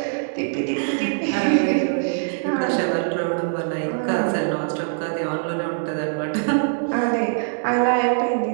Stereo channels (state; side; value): silent; left; digital silence